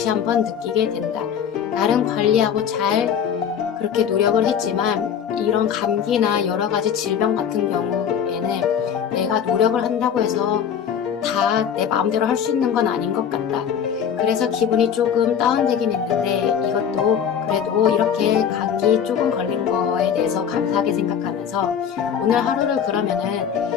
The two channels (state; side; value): quieter; right; 8.1 dB